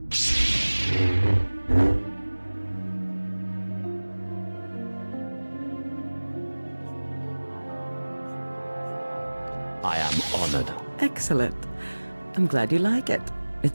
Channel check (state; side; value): inverted; both; correlation -1.00